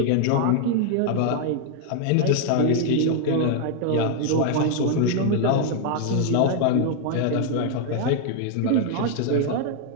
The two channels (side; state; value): both; different; correlation 0.00